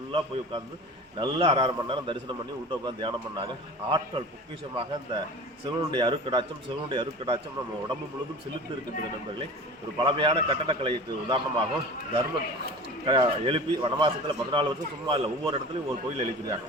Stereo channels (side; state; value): both; normal; correlation 0.37